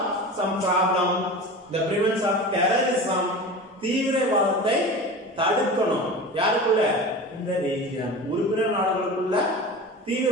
some problem, the prevention of terrorism, தீவிரவாதத்தை தடுக்கணும். யாருக்குள்ள? இந்த ரீஜன், உறுப்பினர் நாடுகளுக்குள்ள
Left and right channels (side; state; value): both; normal; correlation 0.32